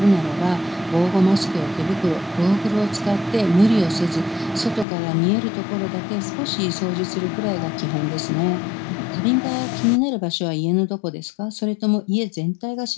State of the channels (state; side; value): drops out; right; at 4.9 s